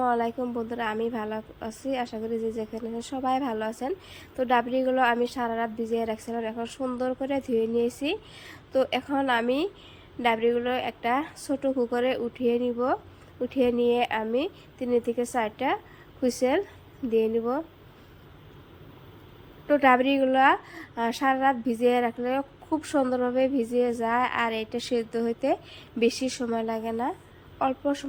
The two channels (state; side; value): identical; both; correlation 1.00